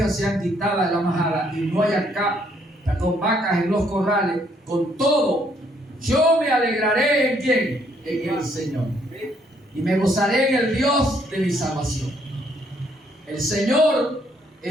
sean quitadas de la majada y no haya vacas en los corrales, con todo yo me alegraré ¿en quién? En el Señor, y me gozaré en el Dios de mi salvación. El Señor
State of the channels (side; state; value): both; normal; correlation 0.69